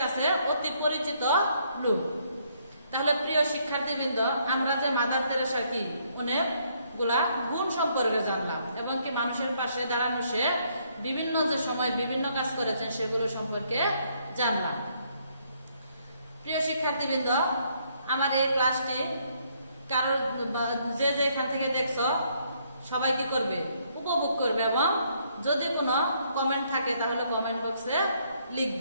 কাছে অতি পরিচিত লোক। তাহলে প্রিয় শিক্ষার্থীবৃন্দ, আমরা যে মাদার তেরেসা কি অনেকগুলা গুণ সম্পর্কে জানলাম এবং কি মানুষের পাশে দাঁড়ানো সে বিভিন্ন যে সময় বিভিন্ন কাজ করেছেন সেগুলো সম্পর্কে জানলাম। প্রিয় শিক্ষার্থীবৃন্দ, আমার এই ক্লাসটি কারোর যে এখান থেকে দেখছো সবাই কি করবে, উপভোগ করবে এবং যদি কোনো কমেন্ট থাকে তাহলে কমেন্ট বক্সে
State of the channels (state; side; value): inverted; both; correlation -0.70